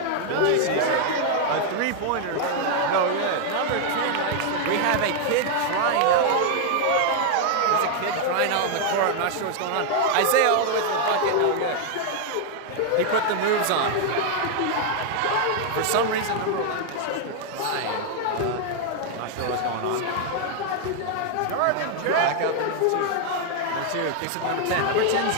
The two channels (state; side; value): different; both; correlation 0.00